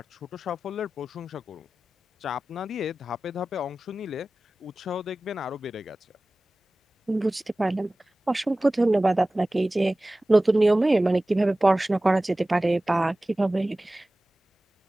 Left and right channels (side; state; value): both; normal; correlation 0.97